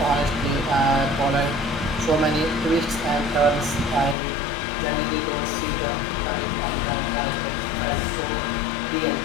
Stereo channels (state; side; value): drops out; right; at 4.2 s